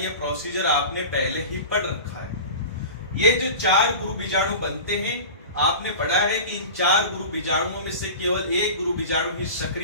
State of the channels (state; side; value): inverted; both; correlation -0.34